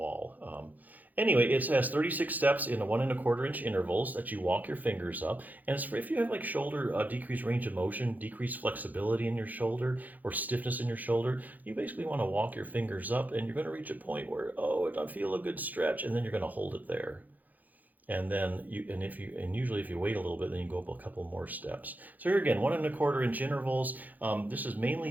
Anyway, it has 36 steps in 1 1/4 inch intervals that you walk your fingers up. And it's for if you have like shoulder decreased range of motion, decreased flexibility in your shoulder, or stiffness in your shoulder, you basically want to walk your fingers up, and you're going to reach a point where, oh, I feel a good stretch, and then you're going to hold it there. And then usually if you wait a little bit, then you go up a couple more steps. So here again, 1 1/4 inch intervals. This is mainly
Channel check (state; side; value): late; left; 0.082 ms